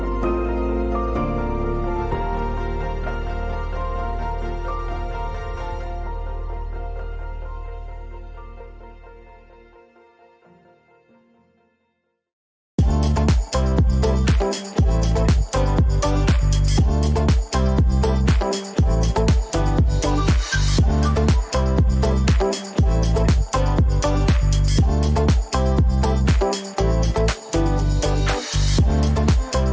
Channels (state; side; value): identical; both; correlation 1.00